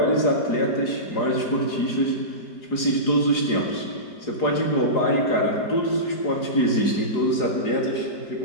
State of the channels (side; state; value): right; late; 4.8 ms